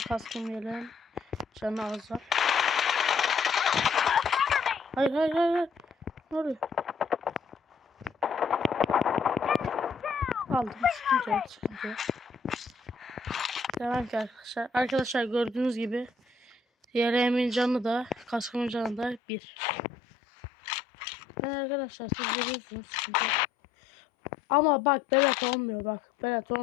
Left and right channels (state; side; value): drops out; right; at 19.2 s